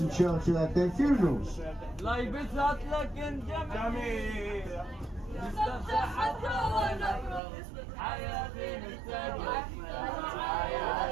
Churchill had their funerals. On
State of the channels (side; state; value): left; drops out; at 7.4 s